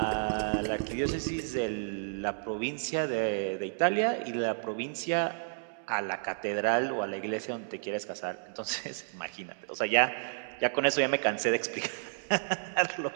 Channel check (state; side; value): silent; left; digital silence